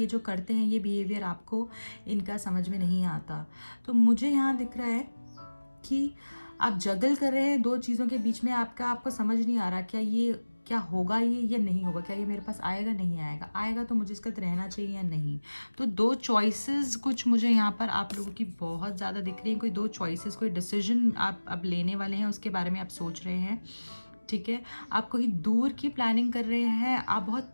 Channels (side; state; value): both; inverted; correlation -1.00